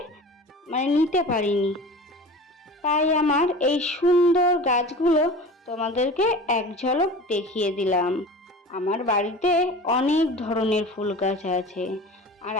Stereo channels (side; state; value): both; normal; correlation 0.37